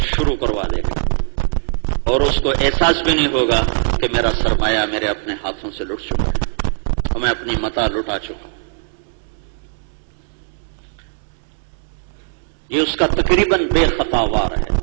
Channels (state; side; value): silent; left; 66 dB below the other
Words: شروع کروا دے گا، اور اس کو احساس بھی نہیں ہوگا کہ میرا سرمایہ میرے اپنے ہاتھوں سے لٹ چکا ہے اور میں اپنی متاع لٹا چکا ہوں۔ یہ اس کا تقریباً بے خطا وار ہے،